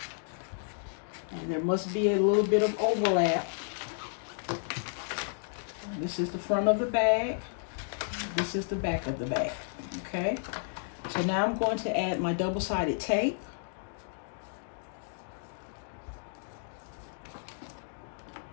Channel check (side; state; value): right; silent; digital silence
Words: there must be a little bit of overlap. This is the front of the bag. This is the back of the bag. Okay, so now I'm going to add my double-sided tape.